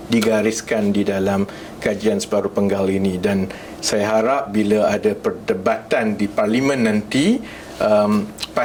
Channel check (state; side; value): identical; both; correlation 1.00